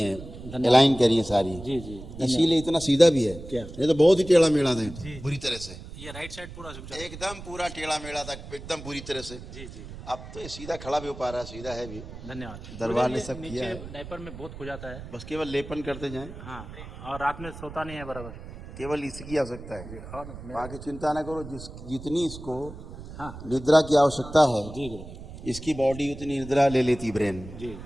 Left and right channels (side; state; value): right; noise; rumble, 13 dB below the sound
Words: धन्यवाद। अलाइन करी हैं सारी। जी जी, इसीलिए इतना सीधा भी है। क्या? नहीं तो बहुत ही टेढ़ा मेढ़ा था, बुरी तरह से, ये राइट साइड पूरा झुक जाता एकदम पूरा टेढ़ा मेढ़ा था, एकदम बुरी तरह से। है। जी जी, अब तो ये सीधा खड़ा भी हो पा रहा है, सीधा है भी। धन्यवाद। दरबार ने गुरुजी, सब ये किया नीचे है। डायपर में बहुत खो जाता है। बस केवल लेपन करते जाएं, हाँ, और रात में सोता नहीं है बराबर। केवल इसकी आवश्यकता है। और बाकी चिंता ना करो, जितनी इसको हाँ निद्रा की आवश्यकता है, जी गुरुजी, इसकी बॉडी उतनी निद्रा ले लेती ब्रेन, जी